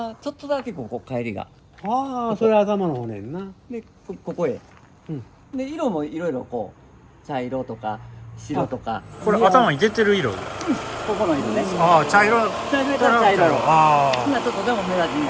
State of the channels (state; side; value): identical; both; correlation 1.00